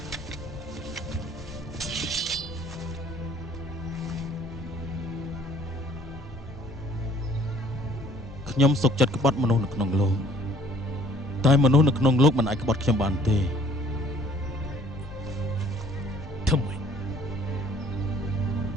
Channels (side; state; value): both; normal; correlation 0.58